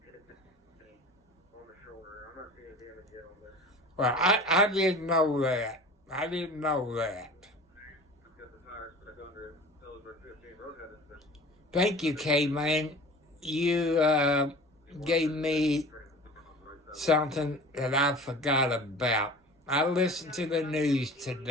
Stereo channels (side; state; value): both; normal; correlation 0.40